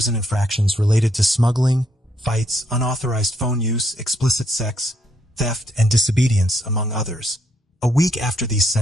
infractions related to smuggling, fights, unauthorized phone use, explicit sex, theft, and disobedience, among others. A week after these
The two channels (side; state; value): both; normal; correlation 0.74